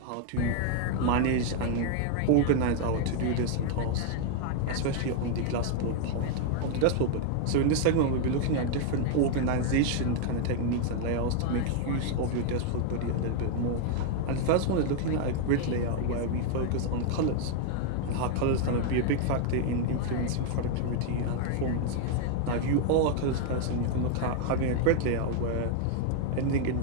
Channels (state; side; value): different; both; correlation 0.00